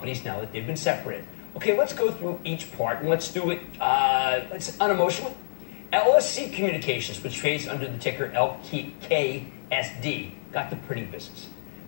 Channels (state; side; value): silent; right; digital silence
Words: now that they've been separated? Okay, let's go through each part, and let's do it unemotionally. LSC Communications, which trades under the ticker LKSD, got the printing business.